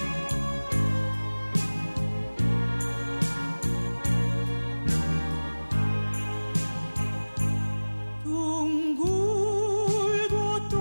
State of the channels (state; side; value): inverted; both; correlation -1.00